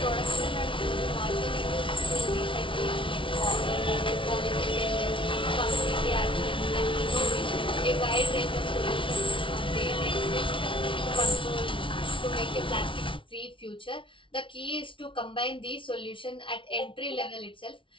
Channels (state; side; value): late; right; 0.25 ms